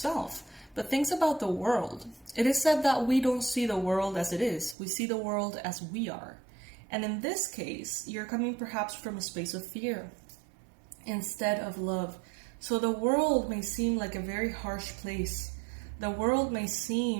but things about the world. It is said that we don't see the world as it is. We see the world as we are. And in this case, you're coming perhaps from a space of fear instead of love. So the world may seem like a very harsh place. The world may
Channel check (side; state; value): left; drops out; at 4.8 s